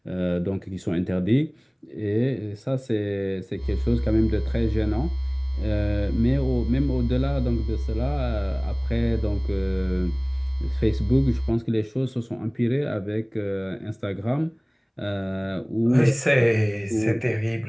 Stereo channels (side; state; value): both; identical; correlation 1.00